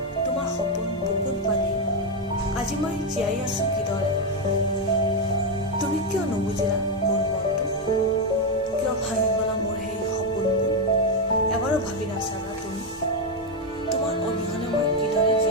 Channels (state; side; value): normal; both; correlation 0.05